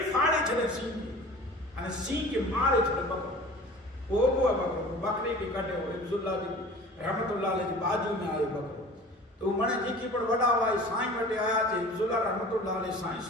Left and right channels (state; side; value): normal; both; correlation 0.42